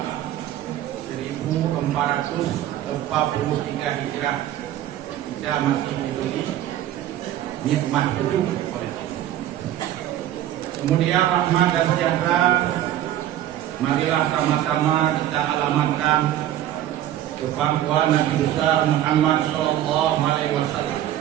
1443 Hijrah, kita masih diberi nikmat hidup oleh Allah. Kemudian rahmat dan sejahtera marilah sama-sama kita alamatkan ke pangkuan Nabi besar Muhammad sallallahu alaihi wasallam,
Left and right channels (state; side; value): quieter; left; 12.5 dB